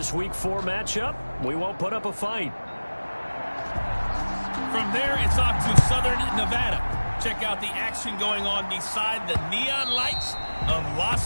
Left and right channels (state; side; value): inverted; both; correlation -1.00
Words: Week 4 matchup, we won't put up a fight. From there, it's off to Southern Nevada. Check out the action going on beside the neon lights of